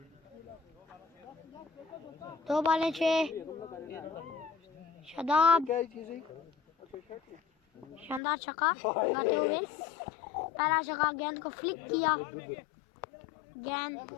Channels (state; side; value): drops out; right; at 8.2 s